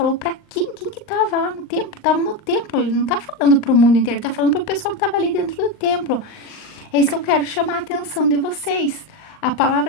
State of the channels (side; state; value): right; late; 38 ms